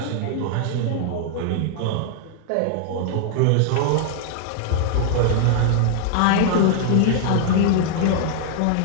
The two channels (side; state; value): both; different; correlation -0.01